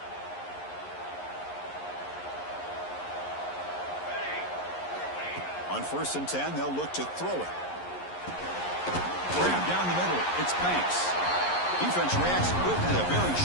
On 1st and 10, they'll look to throw it. Grab down the middle. It's Banks. Defense reacts quickly. A very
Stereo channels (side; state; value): right; late; 11 ms